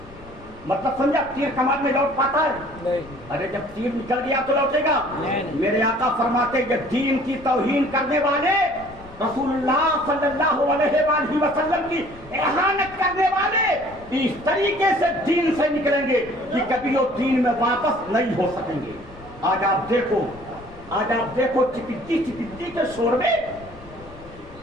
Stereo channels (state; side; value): noise; left; rumble, 20 dB below the sound